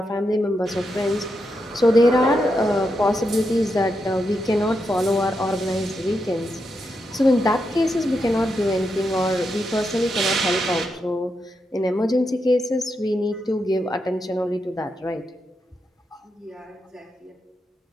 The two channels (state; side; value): normal; both; correlation 0.84